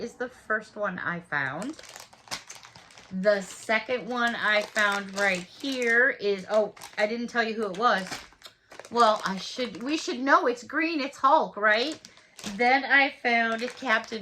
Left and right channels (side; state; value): both; identical; correlation 1.00